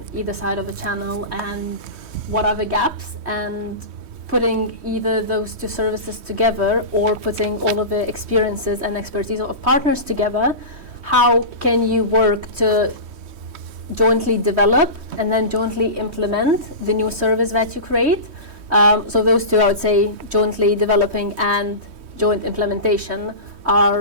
either side of a channel and what are the gaps, and putting either those 2 services together or putting all of the experiences and expertise of partners together. How can you work to jointly develop and then jointly implement the new service that you create? So those 2, I would say, jointly developing and joint implementation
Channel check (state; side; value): late; left; 3.1 ms